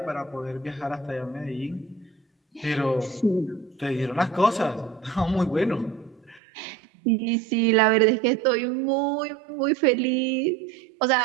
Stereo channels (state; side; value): drops out; left; at 6.4 s